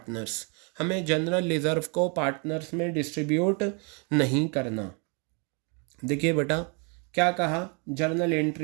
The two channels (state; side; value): quieter; left; 35.1 dB